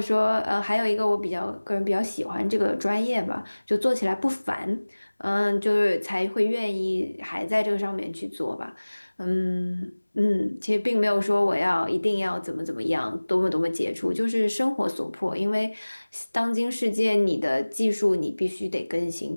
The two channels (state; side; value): inverted; both; correlation -1.00